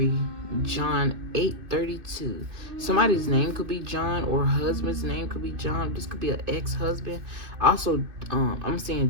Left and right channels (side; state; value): left; late; 2.6 ms